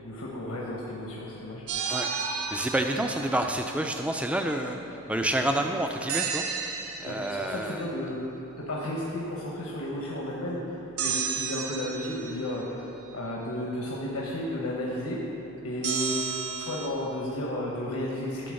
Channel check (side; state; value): left; noise; hum, 26 dB below the sound